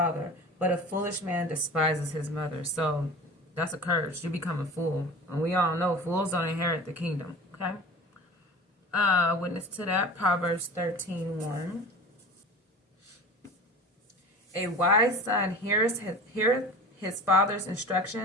but a foolish man despises his mother. So, that's a curse. You become a fool. And we all know fools don't inherit the kingdom. Okay? Witness to that. Proverbs 13:1. A wise son heareth his father's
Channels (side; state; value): both; normal; correlation 0.37